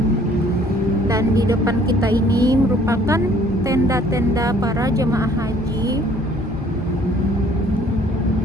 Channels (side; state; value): both; normal; correlation 0.58